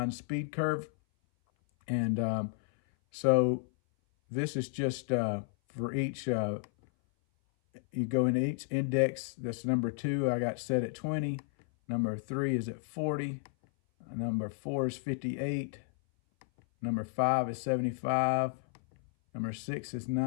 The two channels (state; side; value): silent; right; 56 dB below the other